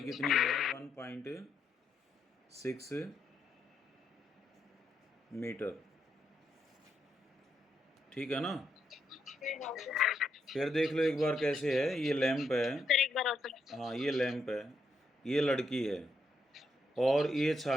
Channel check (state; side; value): normal; both; correlation 0.79